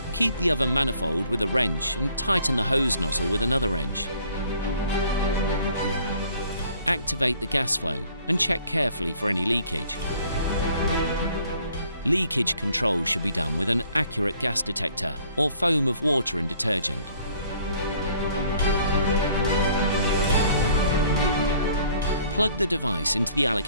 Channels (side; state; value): both; inverted; correlation -0.59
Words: keep the oven manifold with a wrench and tighten the hose nozzle with another wrench. Activate the gas flow and check carefully for any leakage. Leakage control should be done with an accurate gas detector or foam of water and detergent. Plug the device into the